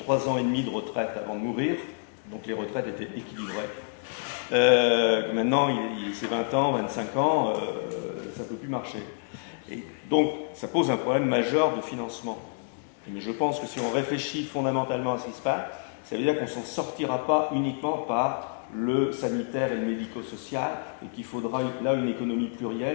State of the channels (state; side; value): silent; right; digital silence